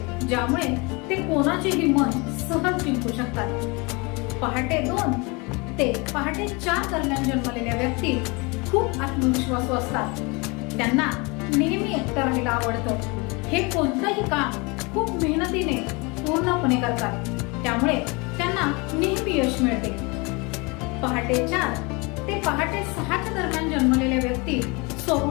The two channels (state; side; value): quieter; right; 27.9 dB